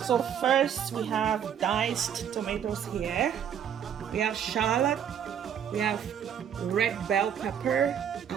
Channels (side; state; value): left; quieter; 8.8 dB